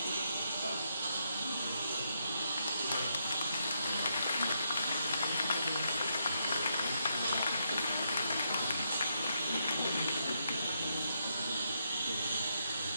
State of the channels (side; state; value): both; inverted; correlation -0.79